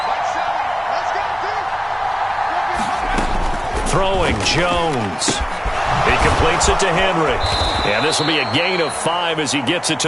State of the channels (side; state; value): both; identical; correlation 1.00